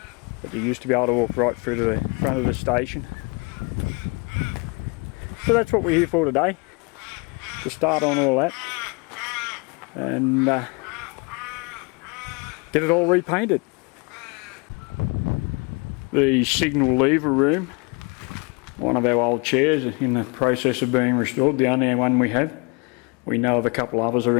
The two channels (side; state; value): right; quieter; 30.8 dB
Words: But you used to be able to walk right through to the front of the station. So that's what we're here for today, to start on all that and get it all repainted. The signal lever room, one of our old chairs in the process of being restored, the only one we have. We know of a couple others